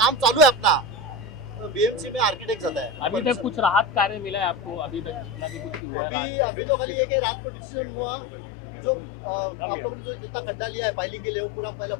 चालू है अपना, तो BMC में आर्किटेक्ट आता है। अभी तक कुछ राहत कार्य मिला है आपको? अभी तक जितना भी कुछ हुआ है? अभी तो खाली ये कि रात को डिसीजन हुआ कि जो आप लोगों ने जो जितना खड्डा लिया है पाइलिंग के लिए, वो पूरा पहले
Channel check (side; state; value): right; drops out; at 5.8 s